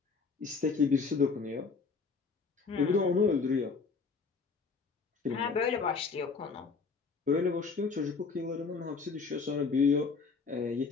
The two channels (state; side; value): quieter; right; 4.9 dB